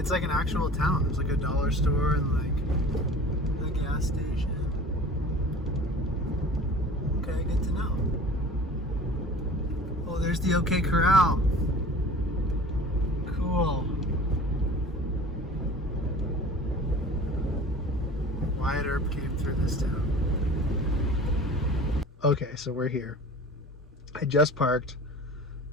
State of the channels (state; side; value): normal; both; correlation 0.41